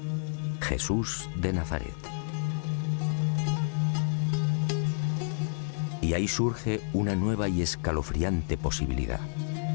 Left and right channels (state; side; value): silent; right; 58 dB below the other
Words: Jesús de Nazaret. Y ahí surge una nueva y escalofriante posibilidad.